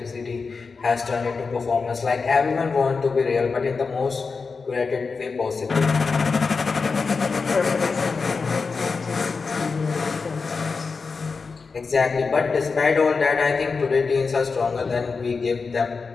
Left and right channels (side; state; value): right; quieter; 4.7 dB